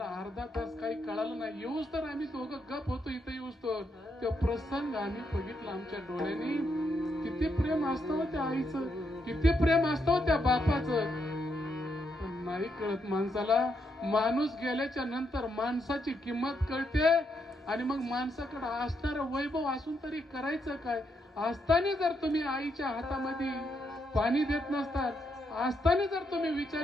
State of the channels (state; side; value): normal; both; correlation 0.79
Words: अर्धा तास काही कळालं नाही. येऊच तर आम्ही दोघं गप होतो इथं येऊच तर. तो प्रसंग आम्ही बघितला आमच्या डोळ्यांनी. किती प्रेम असतं त्या आईचं, किती प्रेम असतं त्या बापाचं. पण नाही कळत माणसाला. माणूस गेल्याच्या नंतर माणसाची किंमत कळते आणि मग माणसाकडे असणारं वैभव असून तरी करायचं काय? असताना जर तुम्ही आईच्या हातामध्ये पाणी देत नसतात, असताना जर तुम्ही